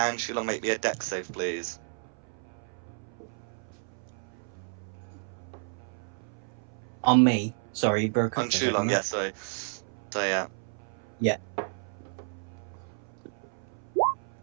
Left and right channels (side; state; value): left; silent; 57 dB below the other